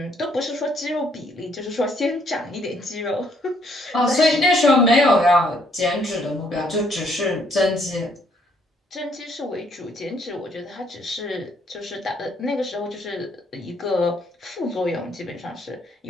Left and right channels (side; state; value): both; normal; correlation 0.68